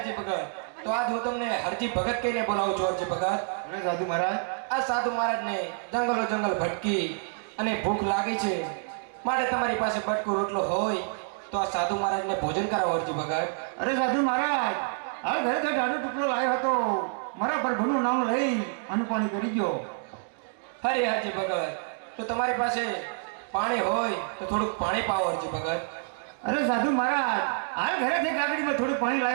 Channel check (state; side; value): silent; left; 59 dB below the other